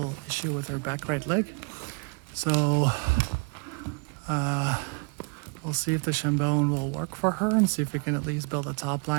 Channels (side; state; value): left; quieter; 35.3 dB